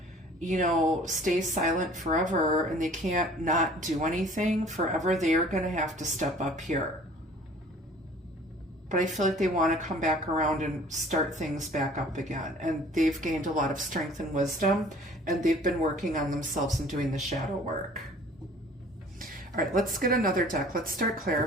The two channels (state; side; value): normal; both; correlation 0.50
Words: stay silent forever, and they can't not do anything forever. They are going to have to step up here. But I feel like they want to come back around and start things back up again. And they've gained a lot of strength and wisdom, and they've been working on themselves and doing the shadow work. All right, let's get another deck. Let's start